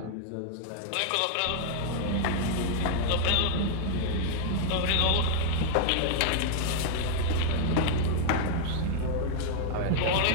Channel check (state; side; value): different; both; correlation -0.01